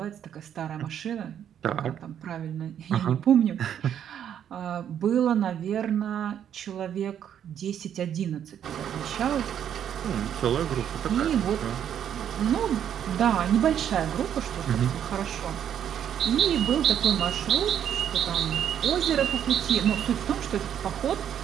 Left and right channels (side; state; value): left; quieter; 9.5 dB